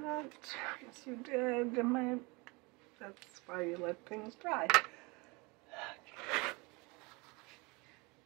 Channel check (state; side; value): quieter; left; 26.8 dB